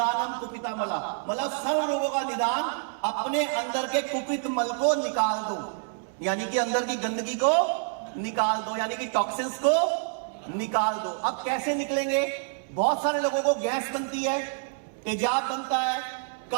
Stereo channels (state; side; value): silent; left; 60 dB below the other